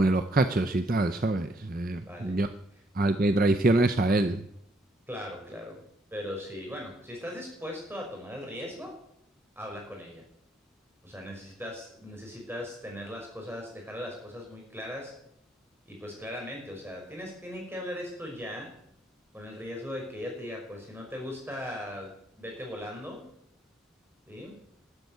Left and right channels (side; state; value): both; normal; correlation 0.70